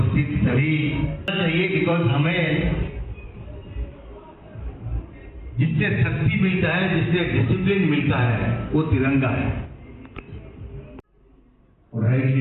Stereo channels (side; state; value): both; identical; correlation 1.00